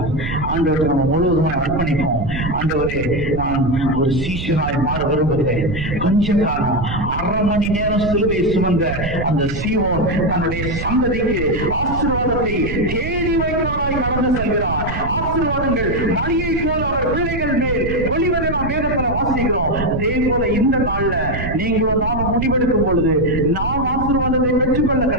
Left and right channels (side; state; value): right; noise; rumble, 6 dB below the sound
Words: ஆண்டவரை நம்ம முழுவதுமாய் அர்ப்பணிப்போம். ஆண்டவரே, நான் ஒரு சீஷனாய் மாற விரும்புகிறேன். கொஞ்ச காலம் 1/2 மணி நேரம் சிலுவை சுமந்த அந்த சீமோன் தன்னுடைய சந்ததிக்கு ஆசீர்வாதத்தை தேடி போலாய் கடந்து செல்கிறார். ஆசீர்வாதங்கள் மழையை போல அவர் பிள்ளைகள் மேல் ஒளிவதை நாம் வேதத்துல வாசிக்கிறோம். அதே போல இந்த நாள்ல நீங்களும் நாம முடிவெடுக்கும் பொழுது நாம் ஆசீர்வாதத்தை பெற்றுக்கொள்ள